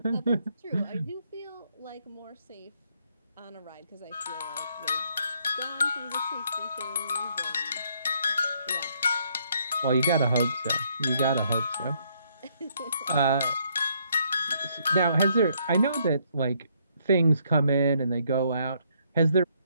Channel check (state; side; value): inverted; both; correlation -0.71